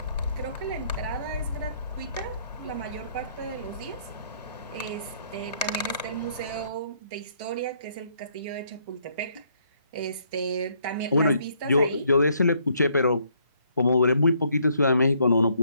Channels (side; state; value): both; inverted; correlation -0.68